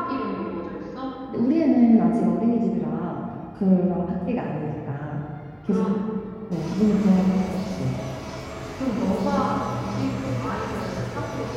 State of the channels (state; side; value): identical; both; correlation 1.00